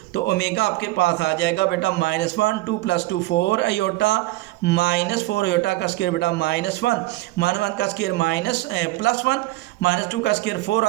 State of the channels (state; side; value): quieter; left; 18.7 dB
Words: तो ओमेगा आपके पास आ जाएगा बेटा -1 2 + 2 4 आयोटा -4 आयोटा का स्केयर बेटा -1 -1 का स्केयर +1 -2 का स्केयर 4